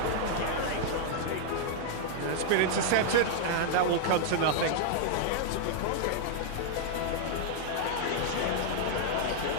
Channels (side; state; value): both; different; correlation -0.01